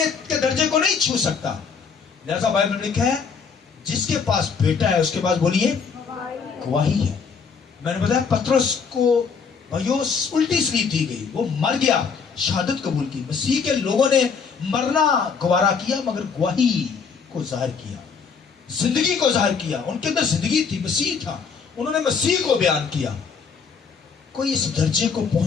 کے درجے کو نہیں چھو سکتا۔ لہذا بائبل میں لکھا ہے جس کے پاس بیٹا ہے اس کے پاس بولیے گواہی ہے۔ میں نے بتایا پترس کو بھائیو الٹی سلیپ دی گئی، وہ مر گیا، شہادت قبول کی۔ مسیح کے لوگوں نے مرنا گوارا کیا مگر گواہی کو ظاہر کیا، زندگی کو ظاہر کیا۔ ان کے اندر زندگی تھی، مسیح تھا، انہوں نے مسیح کو بیان کیا۔ کوئی اس درجے کو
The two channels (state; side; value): quieter; right; 5.8 dB